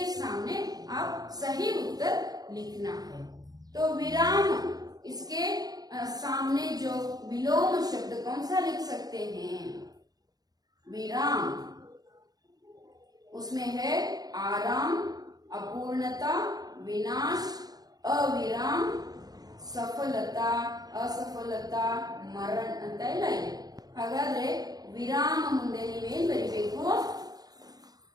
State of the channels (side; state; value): left; late; 0.19 ms